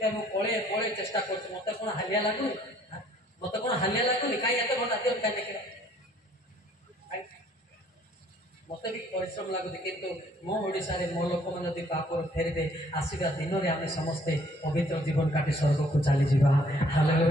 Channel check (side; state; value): both; normal; correlation 0.61